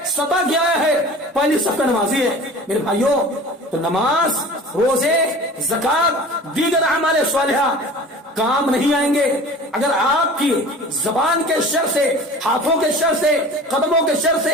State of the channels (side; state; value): both; normal; correlation 0.40